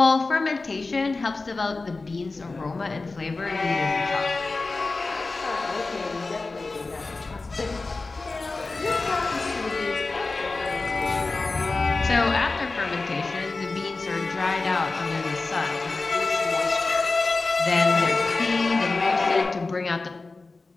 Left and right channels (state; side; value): quieter; right; 3.6 dB